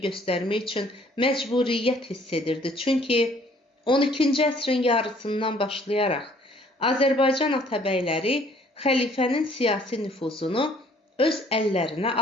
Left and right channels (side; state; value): both; normal; correlation 0.59